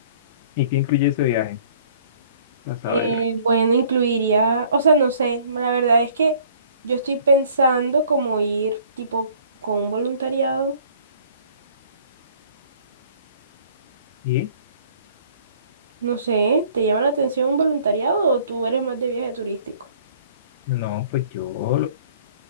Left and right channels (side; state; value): both; inverted; correlation -0.55